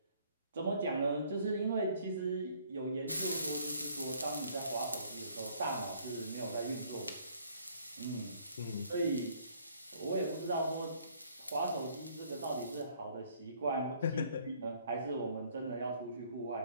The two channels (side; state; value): both; inverted; correlation -0.61